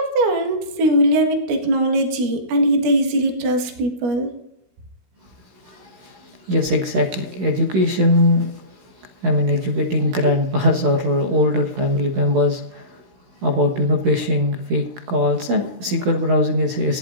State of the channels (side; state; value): left; late; 16 ms